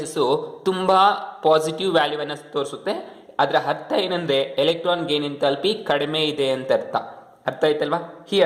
ತುಂಬ positive ವ್ಯಾಲ್ಯೂವನ್ನು ತೋರಿಸುತ್ತೆ. ಅದರ ಅರ್ಥ ಏನಂದ್ರೆ electron gain enthalpy ಕಡಿಮೆ ಇದೆ ಅಂತ ಅರ್ಥ. ಅರ್ಥ ಆಯ್ತಲ್ವಾ?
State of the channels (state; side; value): identical; both; correlation 1.00